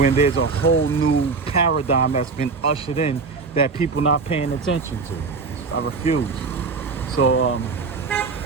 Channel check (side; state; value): left; quieter; 4.5 dB